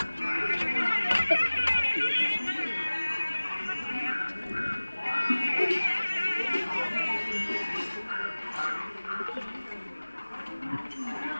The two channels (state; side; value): inverted; both; correlation -1.00